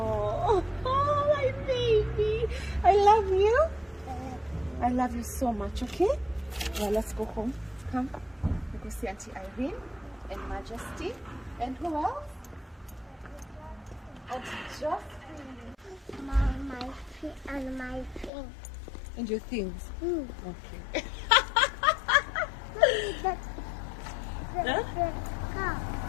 my baby. I love you. I love you so much, okay? Well, let's go home. Come. We go see Auntie Irene and Majesty. And who else? Auntie Jocelyn. My thing. And your things. Okay. The car.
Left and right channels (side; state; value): right; drops out; at 18.3 s